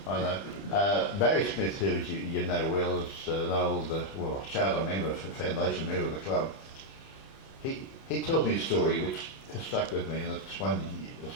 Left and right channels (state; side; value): late; right; 30 ms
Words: Barry Smith, who you know well, is an old charter member, foundation member of the club. He tells me a story which has stuck with me, and it's one will